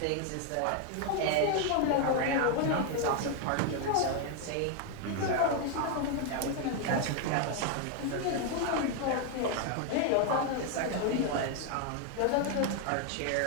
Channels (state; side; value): different; both; correlation 0.01